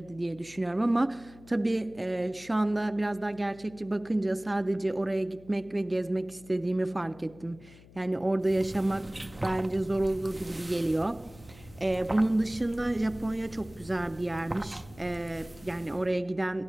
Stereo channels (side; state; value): left; noise; hum, 22 dB below the sound